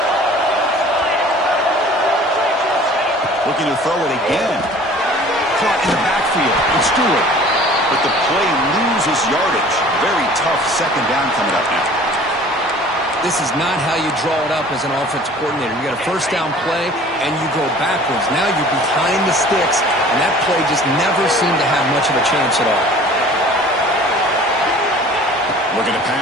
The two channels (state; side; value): normal; both; correlation 0.48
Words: Looking to throw it again. Caught in the backfield. It's Stewart. But the play loses yardage. Very tough second down coming up now. This is not how you draw it up as an offensive coordinator. You got a first down play, and you go backwards. Now you're behind the sticks, and that play just never seemed to have much of a chance at all. Looking to